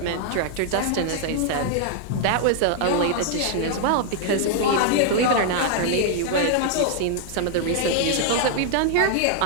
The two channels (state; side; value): different; both; correlation 0.00